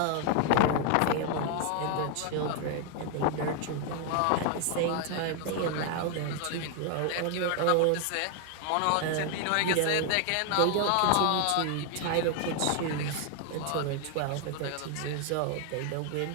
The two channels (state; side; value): different; both; correlation 0.00